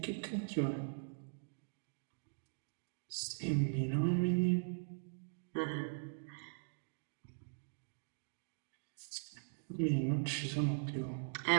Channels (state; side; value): silent; left; digital silence